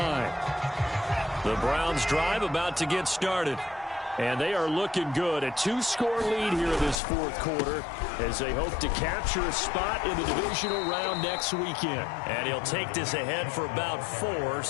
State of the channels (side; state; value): right; drops out; at 7.0 s